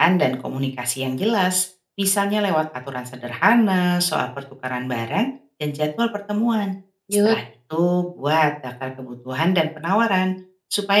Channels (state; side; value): identical; both; correlation 1.00